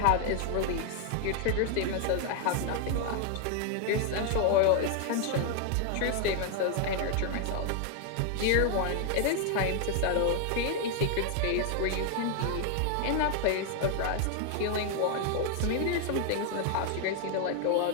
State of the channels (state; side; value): different; both; correlation 0.00